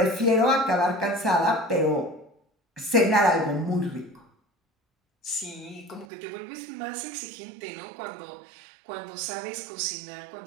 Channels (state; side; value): drops out; left; at 6.1 s